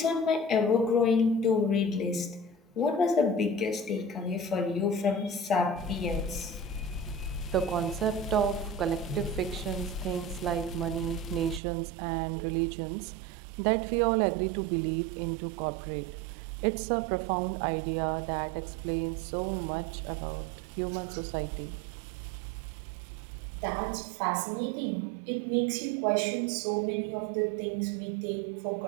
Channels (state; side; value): drops out; left; at 11.6 s